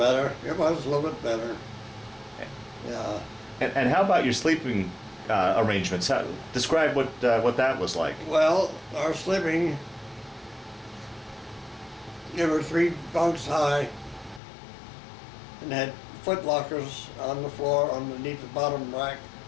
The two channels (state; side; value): drops out; right; at 14.4 s